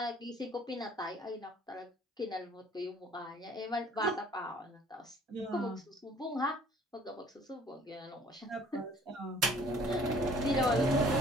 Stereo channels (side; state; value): both; normal; correlation 0.54